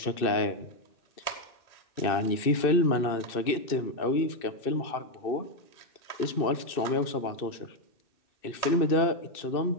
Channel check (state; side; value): late; right; 2.6 ms